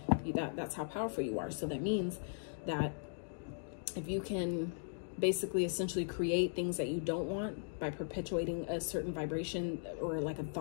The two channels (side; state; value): right; silent; digital silence